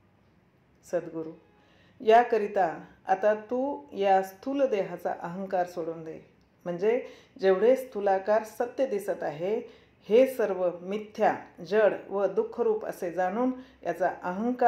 सद्गुरू: याकरिता आता तू या स्थूल देहाचा अहंकार सोडून दे. म्हणजे जेवढे स्थूलाकार सत्य दिसत आहे हे सर्व मिथ्या, जड व दुःखरूप असे जाणून याचा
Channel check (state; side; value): identical; both; correlation 1.00